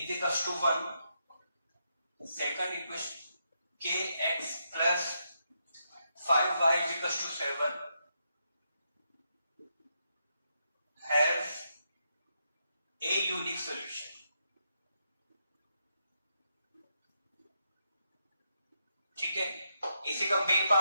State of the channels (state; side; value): inverted; both; correlation -0.81